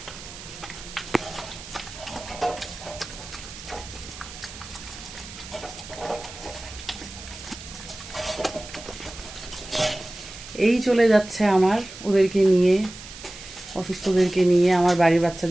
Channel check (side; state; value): right; noise; hiss, 14 dB below the sound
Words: এই চলে যাচ্ছে আমার ওদেরকে নিয়ে, অসুস্থদেরকে নিয়ে, আমার বাড়ির